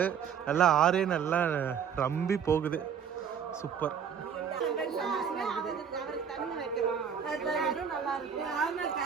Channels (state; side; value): quieter; left; 7.5 dB